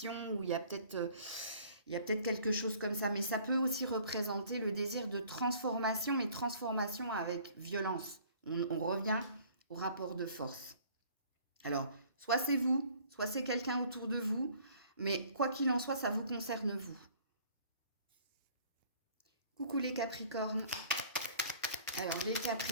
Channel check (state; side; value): inverted; both; correlation -0.54